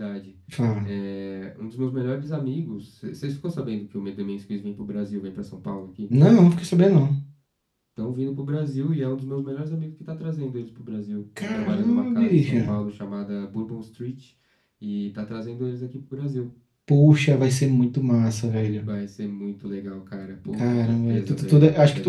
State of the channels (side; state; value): both; identical; correlation 1.00